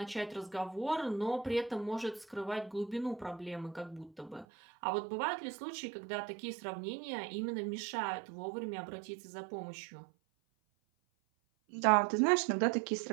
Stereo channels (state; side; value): drops out; left; at 4.5 s